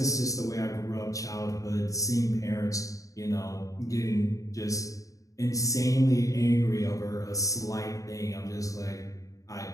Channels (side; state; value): right; late; 0.16 ms